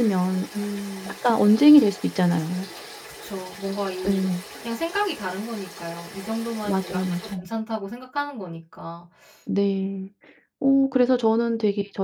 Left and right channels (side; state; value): both; identical; correlation 1.00